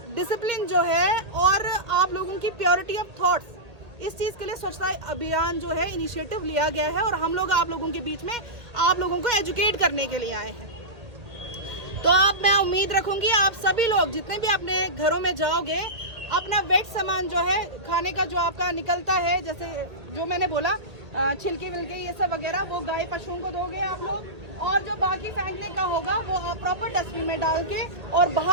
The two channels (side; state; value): left; late; 1.8 ms